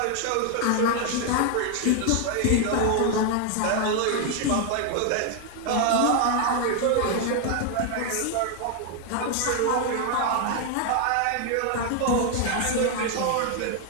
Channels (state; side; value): different; both; correlation 0.00